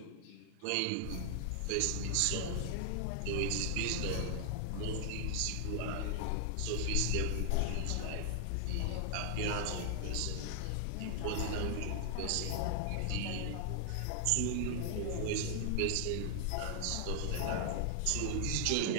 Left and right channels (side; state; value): both; different; correlation 0.00